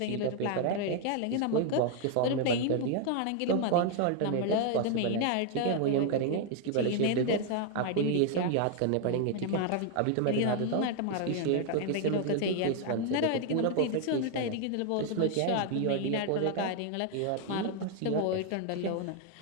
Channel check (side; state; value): both; different; correlation 0.00